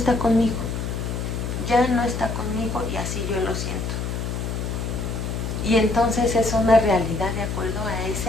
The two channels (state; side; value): noise; left; hum, 3 dB below the sound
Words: conmigo. Ya no está conmigo y así yo lo siento. Y entonces es una realidad de acuerdo a